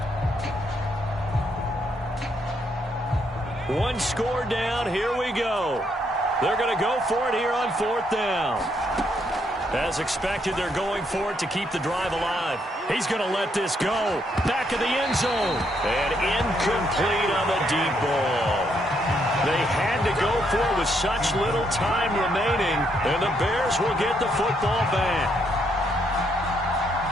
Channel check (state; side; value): normal; both; correlation 0.74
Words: One score down. Here we go. They're going to go for it here on 4th down. As expected, they're going for it to keep the drive alive. He's going to let this go. Back of the end zone. And incomplete on the deep ball. They had to go for it with such little time remaining, and the Bears will get the football back.